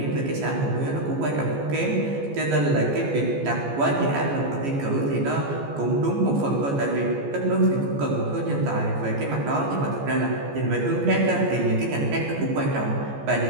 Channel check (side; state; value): left; late; 14 ms